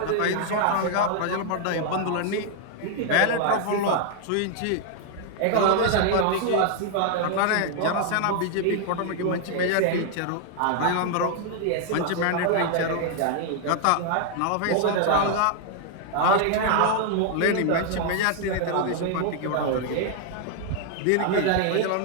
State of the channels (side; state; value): both; different; correlation 0.00